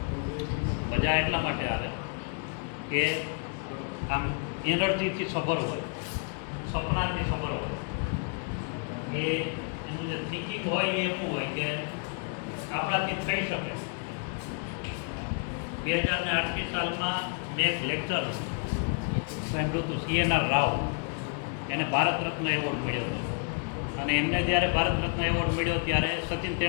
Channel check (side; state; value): right; quieter; 39.2 dB